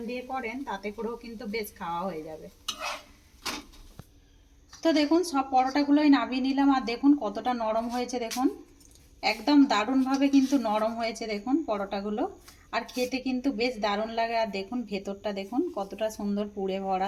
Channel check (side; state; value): both; identical; correlation 1.00